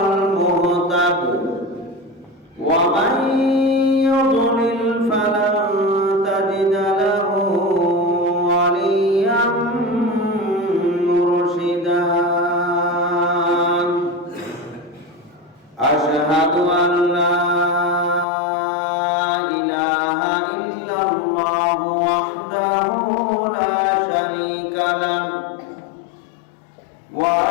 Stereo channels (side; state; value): right; drops out; at 18.2 s